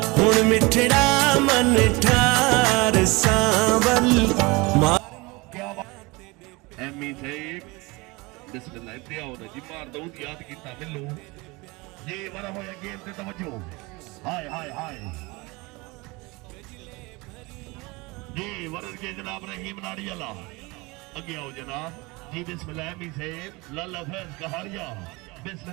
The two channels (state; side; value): quieter; left; 24.7 dB